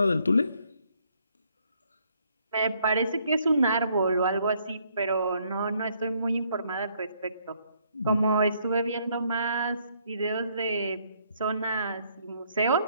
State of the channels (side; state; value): both; inverted; correlation -0.69